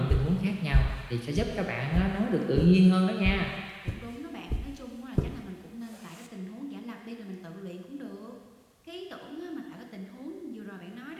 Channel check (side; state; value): both; identical; correlation 1.00